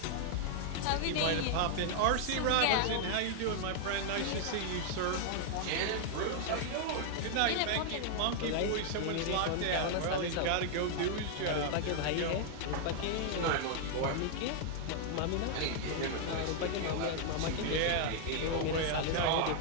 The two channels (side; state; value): both; different; correlation 0.00